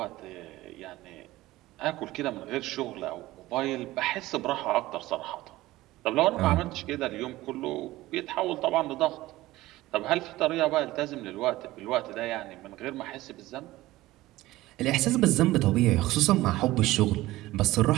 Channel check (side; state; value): left; quieter; 17.4 dB